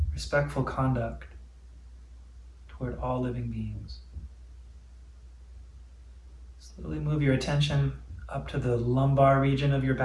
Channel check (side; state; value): both; identical; correlation 1.00